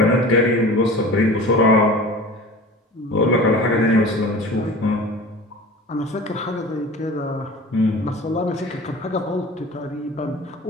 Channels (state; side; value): normal; both; correlation 0.39